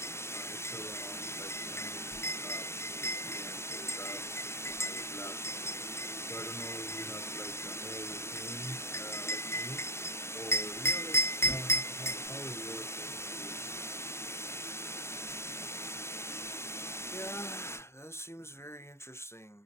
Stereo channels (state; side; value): late; right; 0.13 ms